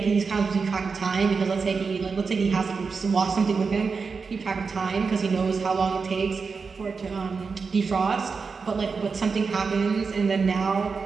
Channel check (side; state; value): left; quieter; 5.0 dB